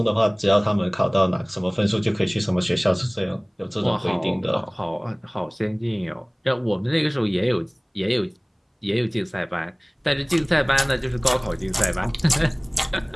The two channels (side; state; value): both; identical; correlation 1.00